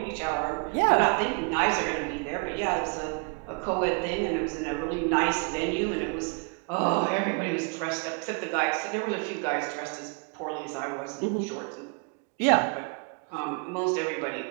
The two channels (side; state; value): left; quieter; 35.1 dB